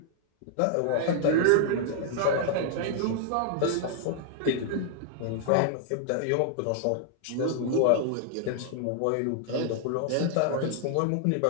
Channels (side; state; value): both; different; correlation 0.00